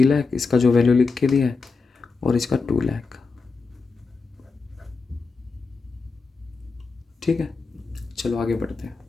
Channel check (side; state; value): right; quieter; 4.4 dB